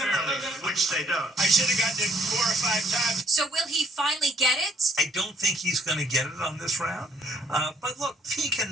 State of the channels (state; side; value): normal; both; correlation 0.63